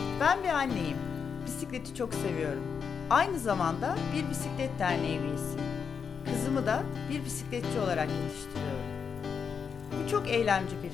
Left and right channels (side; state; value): right; quieter; 6.4 dB